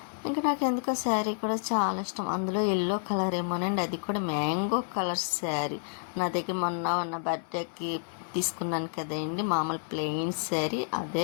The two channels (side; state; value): right; silent; 56 dB below the other